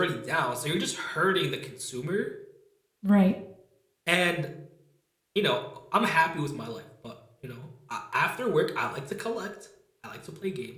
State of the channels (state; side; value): identical; both; correlation 1.00